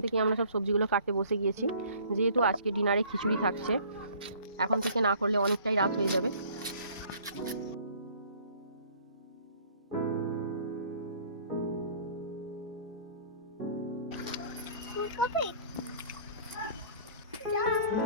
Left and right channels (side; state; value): both; inverted; correlation -0.53